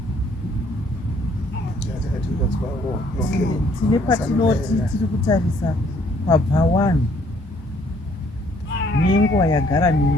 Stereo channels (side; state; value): both; normal; correlation 0.63